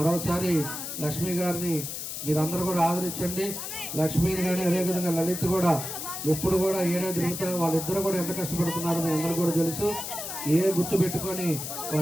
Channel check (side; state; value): left; noise; hiss, 6 dB below the sound